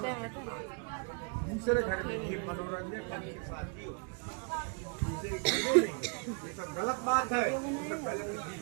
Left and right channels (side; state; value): left; quieter; 35.6 dB